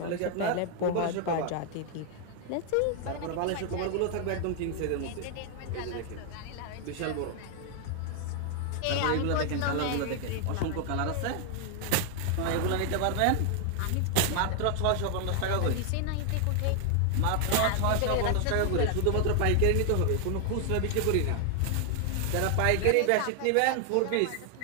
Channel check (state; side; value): different; both; correlation 0.00